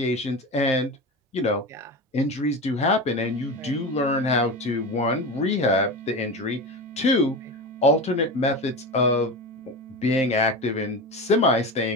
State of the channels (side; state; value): both; normal; correlation 0.25